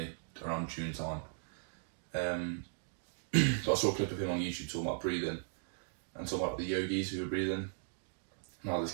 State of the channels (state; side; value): silent; left; digital silence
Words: around June time. But I saw a clip of him on YouTube talking about breathing and talking about the yogis who were breathing. Now this